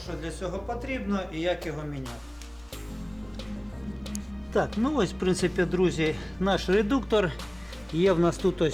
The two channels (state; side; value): noise; left; rumble, 27 dB below the sound